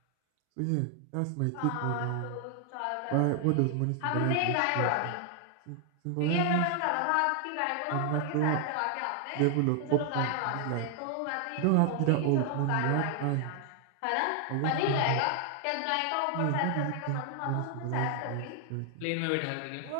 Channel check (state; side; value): different; both; correlation 0.00